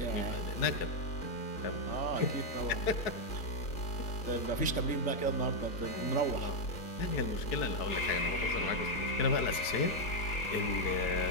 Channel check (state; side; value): late; right; 4.6 ms